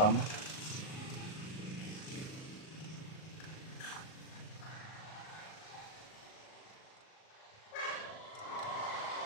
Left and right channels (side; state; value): right; late; 38 ms